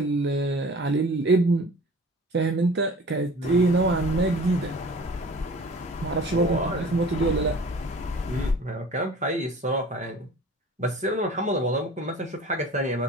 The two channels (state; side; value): normal; both; correlation 0.43